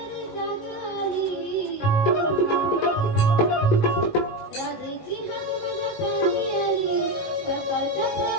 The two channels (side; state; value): right; late; 19 ms